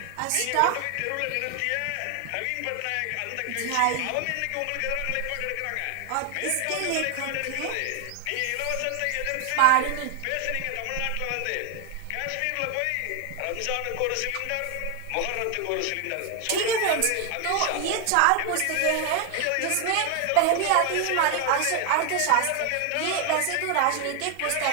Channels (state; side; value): different; both; correlation 0.01